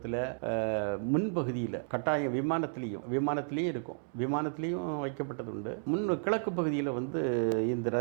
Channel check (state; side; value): silent; left; digital silence